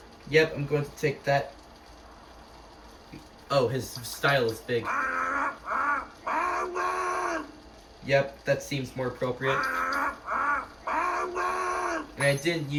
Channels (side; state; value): both; identical; correlation 1.00